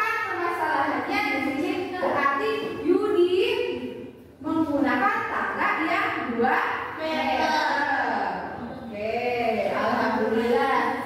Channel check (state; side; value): identical; both; correlation 1.00